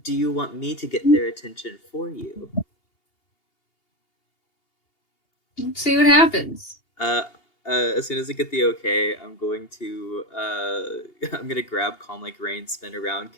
Do you want me to get their attention for you? Let's see what happens. As soon as I get the okay, I'm gonna grab Calm Like Rain, spin around,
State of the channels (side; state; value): right; late; 2.8 ms